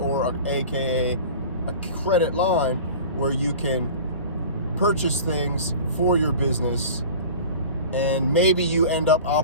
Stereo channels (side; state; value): both; inverted; correlation -0.39